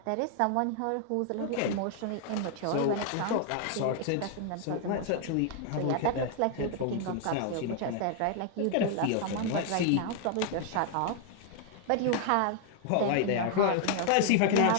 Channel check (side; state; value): both; different; correlation 0.00